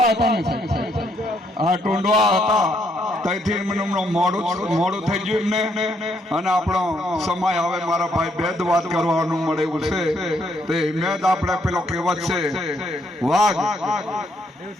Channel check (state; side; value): normal; both; correlation 0.72